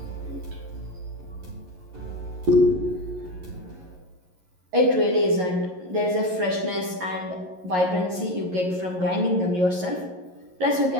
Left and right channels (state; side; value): late; left; 11 ms